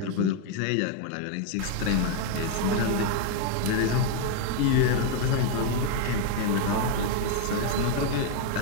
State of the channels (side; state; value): both; different; correlation 0.01